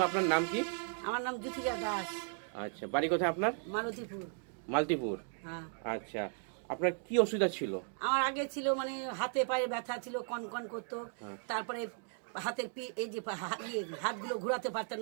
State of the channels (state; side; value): silent; left; 54 dB below the other